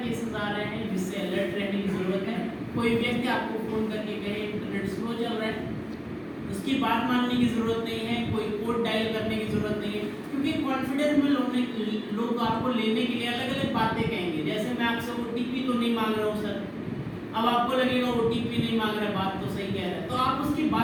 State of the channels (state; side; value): identical; both; correlation 1.00